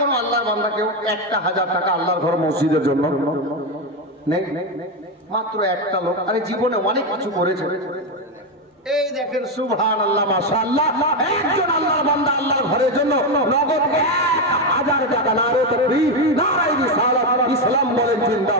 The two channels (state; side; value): normal; both; correlation 0.09